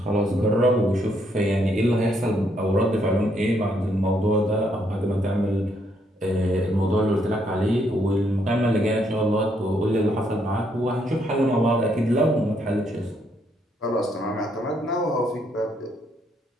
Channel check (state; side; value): normal; both; correlation 0.73